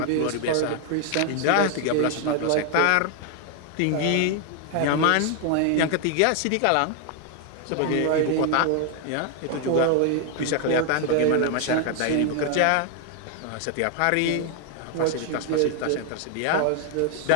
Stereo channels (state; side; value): different; both; correlation 0.00